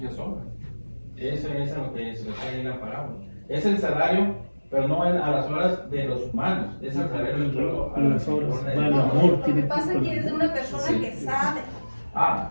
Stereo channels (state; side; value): inverted; both; correlation -1.00